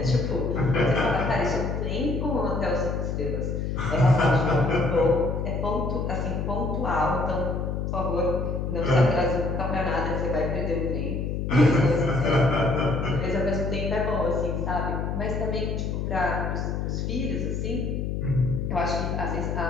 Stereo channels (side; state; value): left; noise; hum, 2 dB below the sound